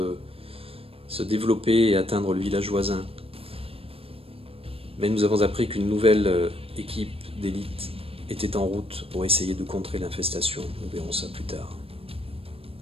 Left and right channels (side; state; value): left; late; 0.28 ms